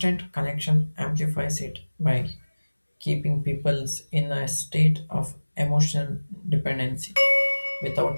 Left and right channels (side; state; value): both; inverted; correlation -1.00